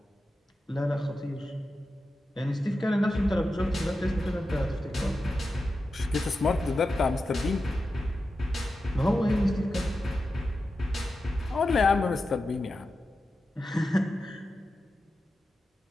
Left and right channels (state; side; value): normal; both; correlation 0.91